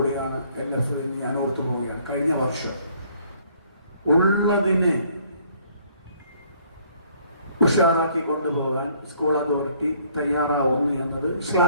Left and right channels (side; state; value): both; inverted; correlation -0.62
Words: LF എന്ന് ഞാൻ ഓർത്തു പോവുകയാണ്. കഴിഞ്ഞ വർഷം ഉള്ളതിനെ ഉഷാറാക്കി കൊണ്ടുപോകാൻ സ്കൂൾ അതോറിറ്റി തയ്യാറാവുന്നു എന്നത്